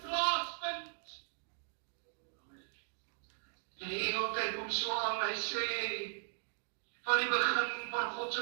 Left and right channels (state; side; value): silent; left; digital silence